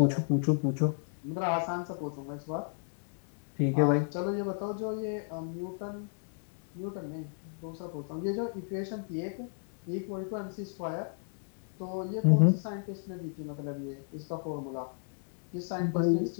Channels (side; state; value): right; silent; digital silence